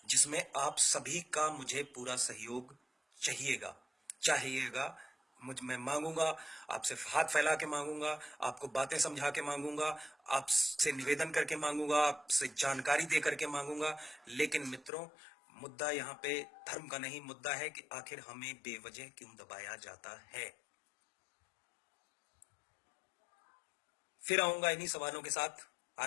जिसमें आप सभी का मुझे पूरा सहयोग चाहिएगा। मैं मांगूंगा, आपसे हाथ फैला के मांगूंगा, आपको बातें समझा के मांगूंगा, आपसे निवेदन करके मांगूंगा, आपसे जानकारी दे करके मांगूंगा। लेकिन मित्रों, मुद्दा यहाँ पे धर्म का नहीं, मुद्दा है कि आखिर हमें बेवजह क्यों दबाया जाता है। फिर आऊंगा इन्हीं सवालों के साथ।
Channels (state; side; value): drops out; right; at 14.9 s